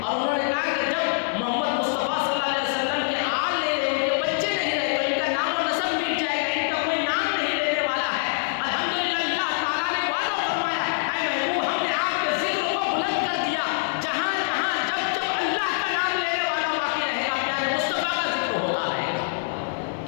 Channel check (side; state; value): right; silent; 62 dB below the other